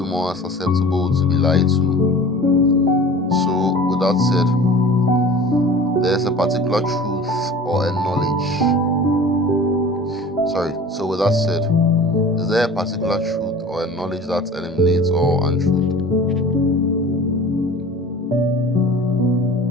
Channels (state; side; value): normal; both; correlation 0.41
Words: more susceptible to be lied to. So, with that said, there's a particular truth or a knowledge. So with that said, is there a particular truth or a knowledge that eliminates all untruth?